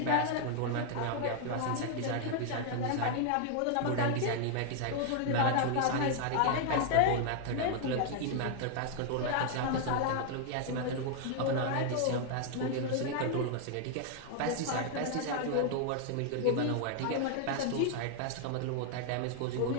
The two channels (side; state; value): both; different; correlation 0.00